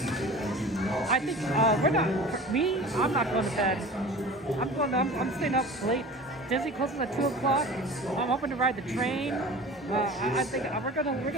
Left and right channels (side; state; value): both; normal; correlation 0.39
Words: and do not. I think I'm not going to bed. I'm staying up late. Disney closes at 2 o'clock. I'm hoping to ride the train. I think we're gonna